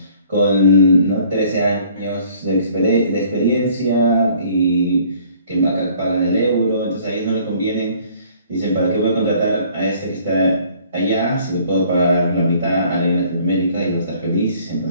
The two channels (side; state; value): both; inverted; correlation -0.57